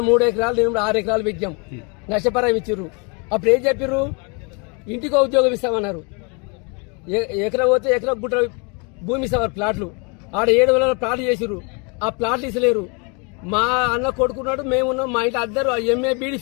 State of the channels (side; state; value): right; quieter; 32.8 dB